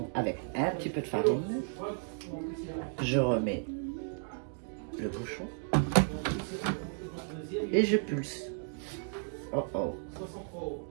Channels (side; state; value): left; silent; 55 dB below the other